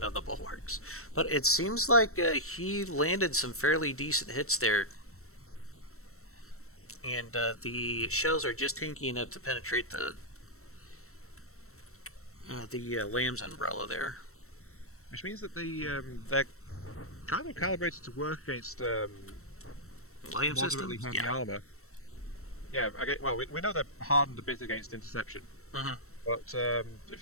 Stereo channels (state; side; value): late; right; 0.63 ms